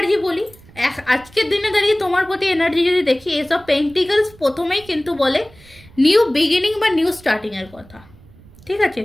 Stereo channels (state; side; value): noise; right; rumble, 24 dB below the sound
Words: বলি, আজকের দিনে দাঁড়িয়ে তোমার প্রতি এনার্জি যদি দেখি, এসব পেন্টিকলস প্রথমেই কিন্তু বলে নিউ বিগিনিং বা নিউ স্টার্টিংয়ের কথা। ঠিক আছে,